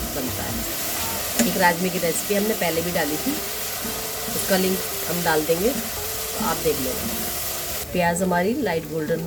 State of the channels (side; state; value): both; identical; correlation 1.00